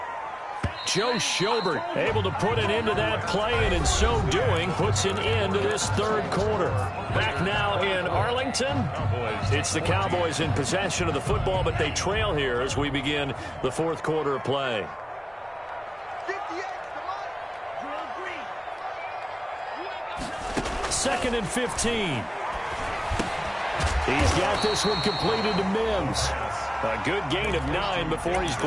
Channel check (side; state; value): both; identical; correlation 1.00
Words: Joe Schobert able to put an end to that play, and in so doing puts an end to this third quarter. Back now in Arlington. It's the Cowboys in possession of the football, but they trail here as we begin the fourth quarter of play. 2nd and 15. He's got this one completed to Mims. A good gain of 9 before he's